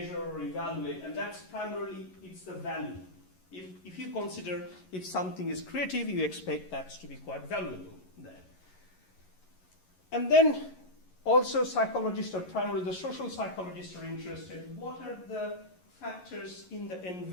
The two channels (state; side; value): late; right; 11 ms